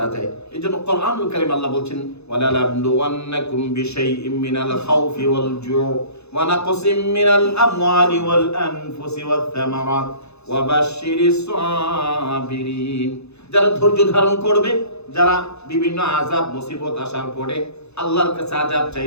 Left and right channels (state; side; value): late; right; 0.80 ms